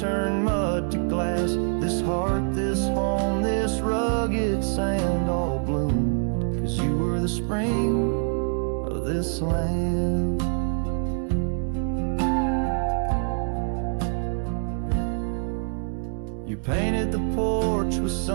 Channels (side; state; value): left; silent; 57 dB below the other